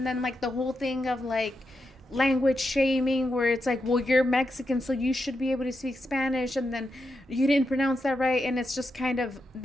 then, like, the whole thing of, like, language shaming, where it's like, well, you're Mexican, so you should be able to speak Spanish, and then you didn't pronounce that right, and it's just kind of,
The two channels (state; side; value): normal; both; correlation 0.86